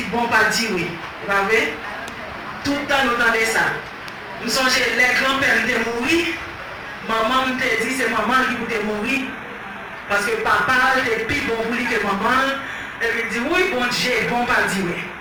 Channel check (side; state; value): both; identical; correlation 1.00